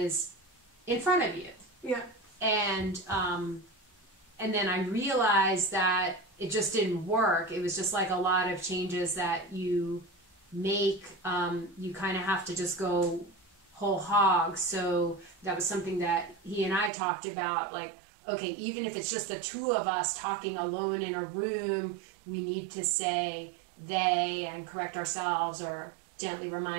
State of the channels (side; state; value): left; drops out; at 16.9 s